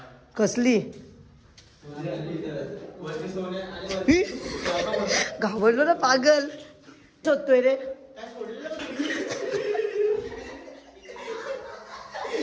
कसली घाबरलो ना पागल, शोधतोय रे,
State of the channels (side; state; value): both; identical; correlation 1.00